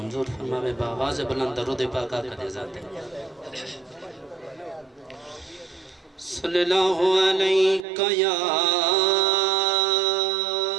فرماوے بآواز بلند درود پاک آقا دے ذات صلی اللہ علیہ یا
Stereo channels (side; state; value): left; drops out; at 7.9 s